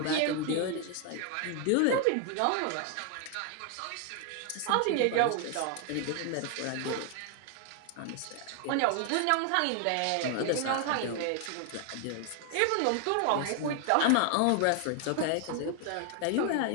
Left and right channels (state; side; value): different; both; correlation 0.00